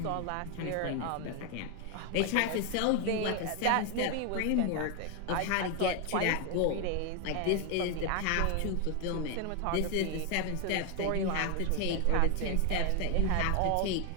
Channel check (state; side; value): different; both; correlation 0.01